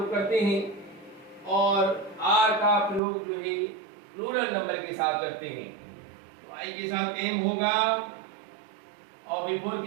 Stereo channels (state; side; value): drops out; left; at 3.0 s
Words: करते हैं, और आर का प्रयोग जो है प्लूरल नंबर के साथ करते हैं। तो आई के साथ एम होगा, और V4